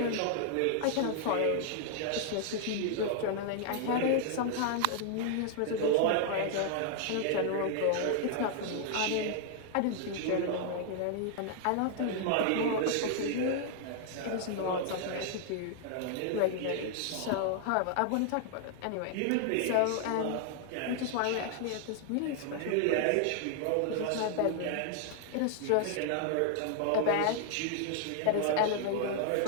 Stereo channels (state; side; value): different; both; correlation 0.00